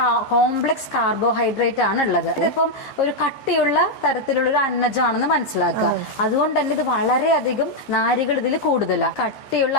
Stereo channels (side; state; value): right; late; 14 ms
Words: കോംപ്ലക്സ് കാർബോഹൈഡ്രേറ്റ് ആണ് ഉള്ളത്. ഇതിപ്പം ഒരു കട്ടിയുള്ള തരത്തിലുള്ള ഒരു അന്നജമാണെന്ന് മനസ്സിലാക്കുക. അതുകൊണ്ട് തന്നെ ഇത് വളരെയധികം നാരുകൾ ഇതിൽ കൂടുതലാണ്. കട്ടിയുള്ള